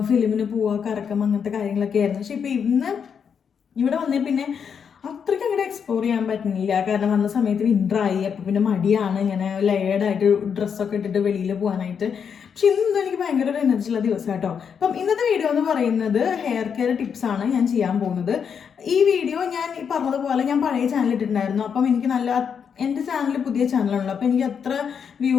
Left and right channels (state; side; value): quieter; right; 7.0 dB